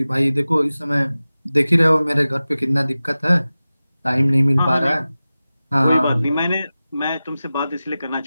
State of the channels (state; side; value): inverted; both; correlation -0.96